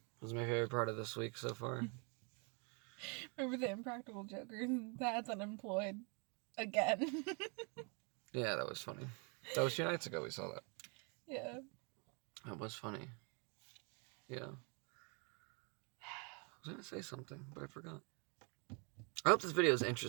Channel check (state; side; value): quieter; left; 34.9 dB